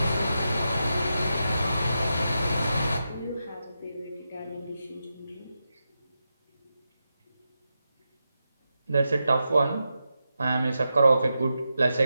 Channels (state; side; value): inverted; both; correlation -0.88